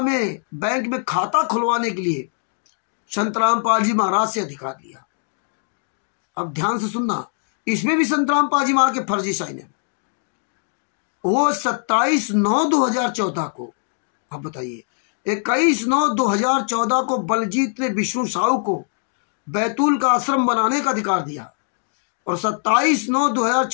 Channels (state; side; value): silent; right; 62 dB below the other